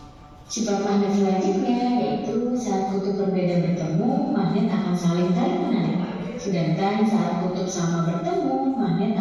Sifat magnet selanjutnya yaitu saat kutub berbeda bertemu, magnet akan saling tarik menarik. Sedangkan saat kutub sama bertemu, magnet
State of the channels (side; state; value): both; identical; correlation 1.00